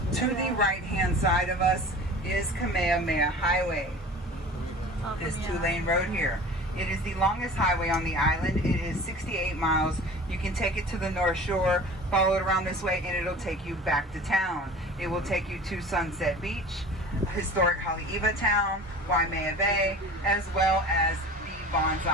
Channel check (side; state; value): both; normal; correlation 0.40